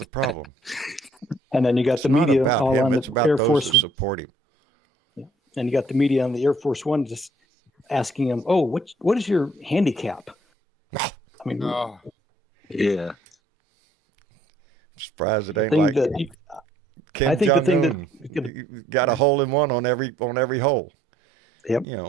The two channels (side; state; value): both; normal; correlation 0.63